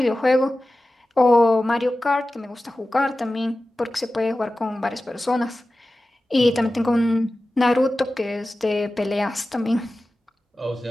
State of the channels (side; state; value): both; normal; correlation 0.95